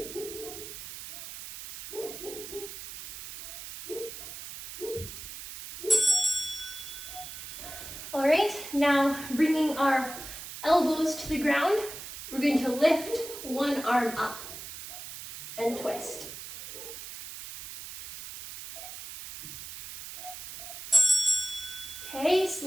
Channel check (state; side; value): noise; right; hiss, 11 dB below the sound